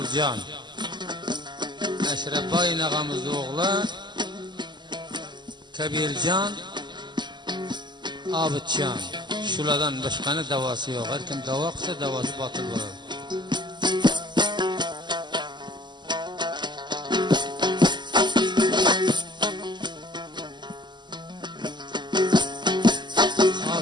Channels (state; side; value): late; left; 0.21 ms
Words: Eşrefa inağamızda oğlu Kabircan, Abidcan. Şuradan başkanı davası yok. Her kim dava kısa davası batıl olur.